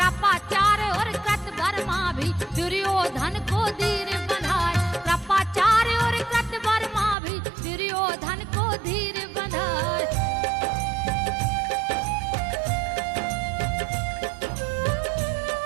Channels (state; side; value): drops out; left; at 7.2 s